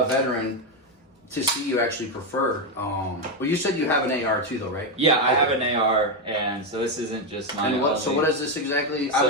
to see you actually prefer. Well, you said you have an AR too, though, right? Yeah, I have an AR, and so this isn't just my. And so what is this exactly?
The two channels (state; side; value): normal; both; correlation 0.07